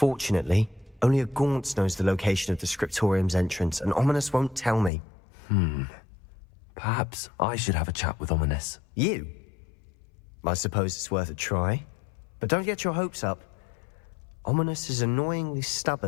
only a Gaunt knows the location of the Scriptorium's entrance, and Ominous won't tell me. Perhaps I should have a chat with Ominous. You? I suppose it's worth a try. But don't get your hopes up. Ominous is annoyingly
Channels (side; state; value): right; drops out; at 4.9 s